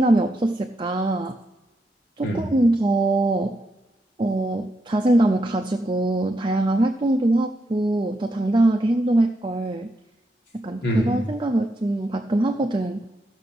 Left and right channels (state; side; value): normal; both; correlation 0.81